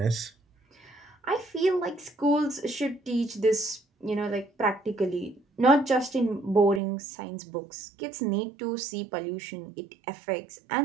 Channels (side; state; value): left; drops out; at 6.8 s